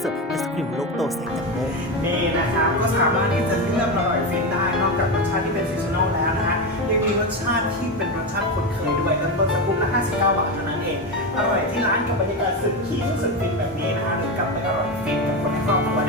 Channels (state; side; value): normal; both; correlation 0.15